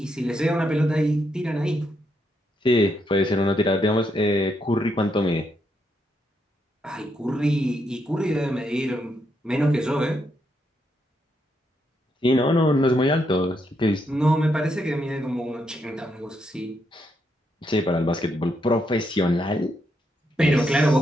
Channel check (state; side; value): normal; both; correlation 0.79